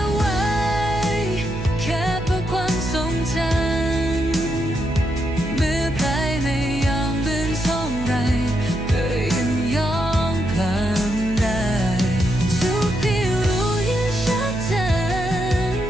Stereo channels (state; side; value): noise; right; hum, 8 dB below the sound